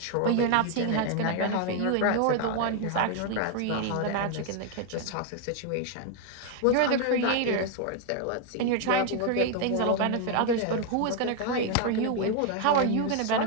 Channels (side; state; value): both; different; correlation 0.01